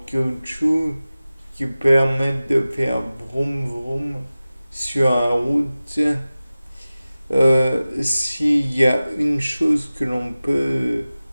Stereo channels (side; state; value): both; inverted; correlation -0.97